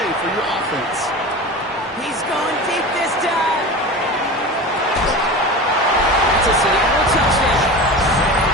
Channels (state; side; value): normal; both; correlation 0.31